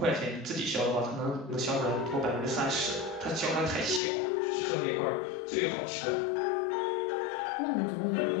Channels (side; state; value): right; drops out; at 4.0 s